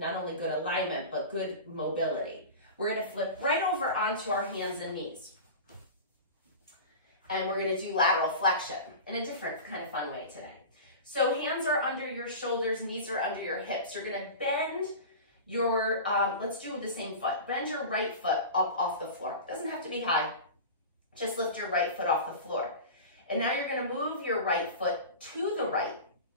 only good alignment, but good mobility. We're gonna flip right over onto our hands and knees. And we're gonna do lateral flexion in a different kind of fun way today. So hands are under your shoulders, knees are under your hips. You're gonna bend your, let's do the same foot. Bend your right foot up off the floor. Doesn't have to be high. Just lift your right foot off the floor. And now you're gonna move your right foot to the right,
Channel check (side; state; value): both; inverted; correlation -0.32